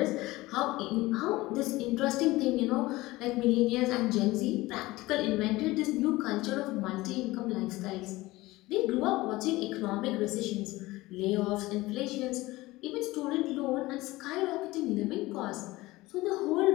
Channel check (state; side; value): quieter; right; 19.4 dB